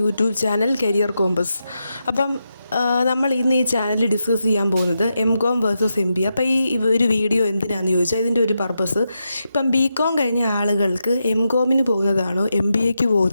channel Career Compass. അപ്പം നമ്മൾ ഇന്ന് ഈ ചാനലിൽ ഡിസ്കസ് ചെയ്യാൻ പോകുന്നത് MCOM വേഴ്സസ് MBA. അപ്പോൾ ഈ ഒരു വീഡിയോ എന്തിനാണെന്ന് ചോദിച്ചാൽ ഇതിൻ്റെ ഒരു പർപ്പസ്, ഇപ്പം BCOM കഴിഞ്ഞ ആളുകൾക്ക് MCOMന് പോകുന്നതാണോ MBAക്ക്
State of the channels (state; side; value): inverted; both; correlation -0.87